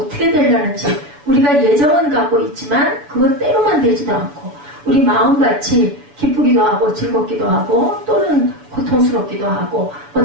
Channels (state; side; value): late; left; 7.0 ms